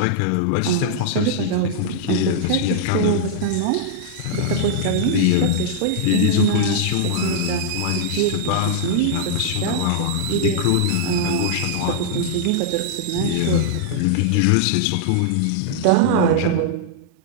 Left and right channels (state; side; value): different; both; correlation -0.01